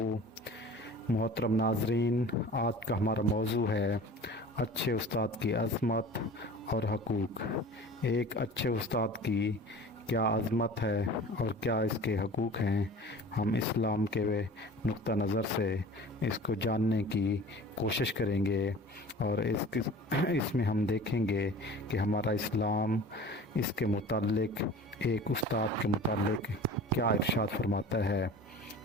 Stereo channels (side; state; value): both; normal; correlation 0.41